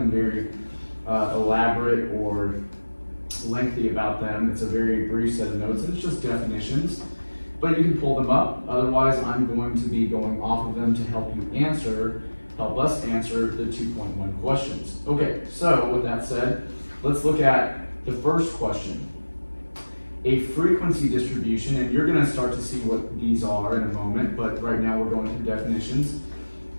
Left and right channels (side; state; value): both; inverted; correlation -1.00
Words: very elaborate or lengthy about them. It's a very brief set of notes. It's just definitions. But you can pull them up. Otherwise, I'm going to be going off of them to help us answer the 2.1 questions. Okay, so with that said, let's look at the first question. A frequency distribution, and you're going to start to see what these are in a moment, but right now we're going through definitions.